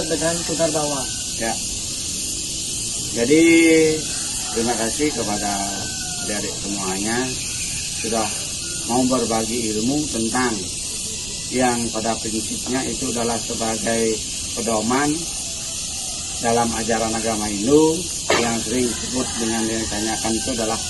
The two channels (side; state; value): right; noise; rumble, 14 dB below the sound